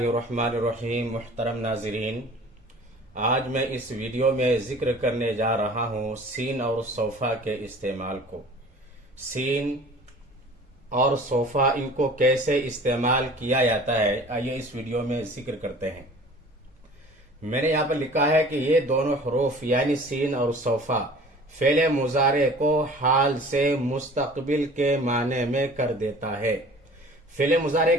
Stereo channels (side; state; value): both; normal; correlation 0.45